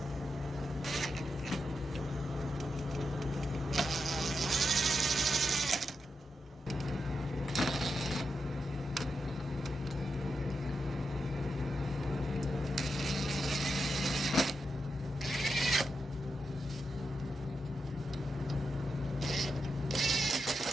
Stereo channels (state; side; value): normal; both; correlation 0.86